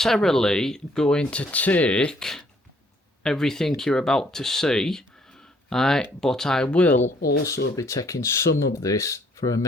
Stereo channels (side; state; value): both; normal; correlation 0.64